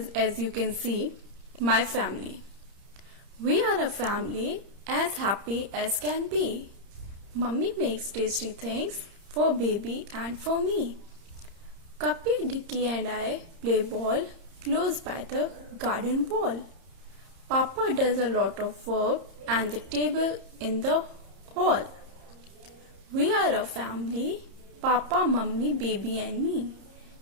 as you can see, My Family. We are a family as happy as can be. Mummy makes tasty things for baby and for me. Cuppy, Dicky and I play ball close by the garden wall. Papa does a lot of work and the table in the hall. We are a family, Papa, Mummy, baby and me.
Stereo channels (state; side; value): late; left; 30 ms